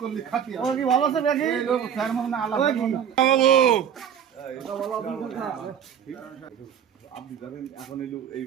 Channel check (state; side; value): quieter; left; 8.6 dB